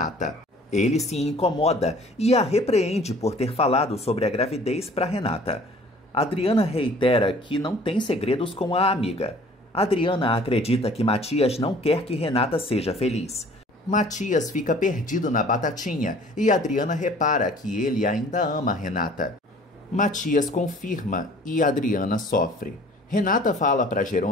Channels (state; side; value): normal; both; correlation 0.51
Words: Ele se incomoda e a repreende por ter falado sobre a gravidez para Renata. Adriana reitera que não tem segredos com a amiga. Adriana acredita que Matias não quer que Renata seja feliz. Matias fica perdido na batatinha e Adriana repara que ele ainda ama Renata. Matias confirma e Adriana sofre. Renata fala para